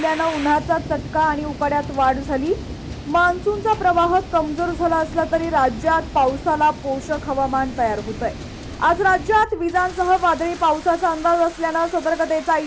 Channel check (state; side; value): identical; both; correlation 1.00